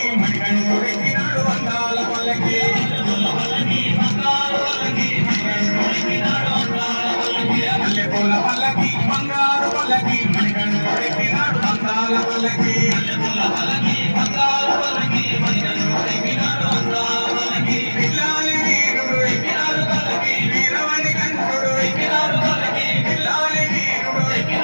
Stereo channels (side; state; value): both; inverted; correlation -1.00